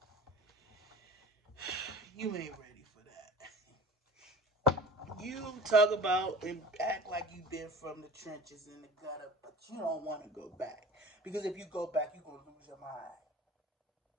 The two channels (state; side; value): normal; both; correlation 0.40